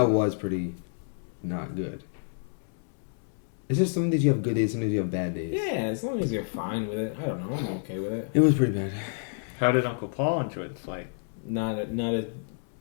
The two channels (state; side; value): silent; right; 59 dB below the other